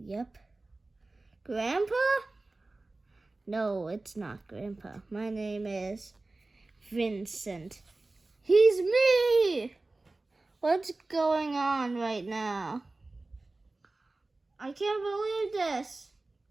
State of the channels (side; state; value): left; quieter; 3.2 dB